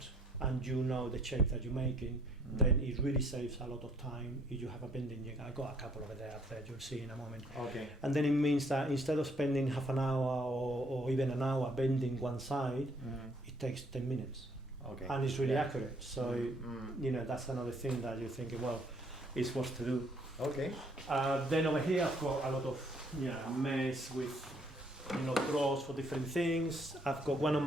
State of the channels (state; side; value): normal; both; correlation 0.63